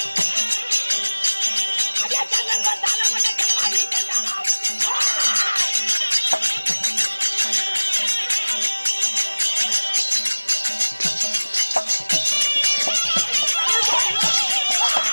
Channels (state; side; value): inverted; both; correlation -1.00